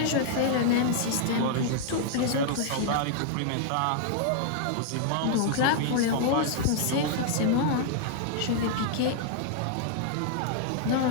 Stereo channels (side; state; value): both; different; correlation -0.01